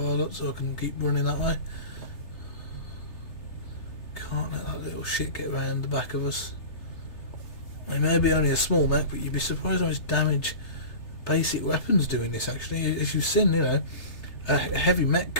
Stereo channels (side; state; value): right; late; 3.3 ms